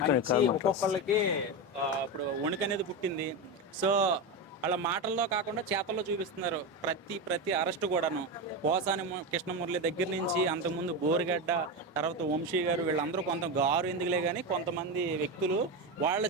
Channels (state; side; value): normal; both; correlation 0.16